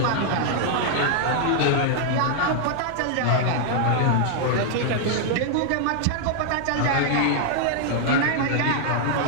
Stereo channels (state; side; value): different; both; correlation -0.01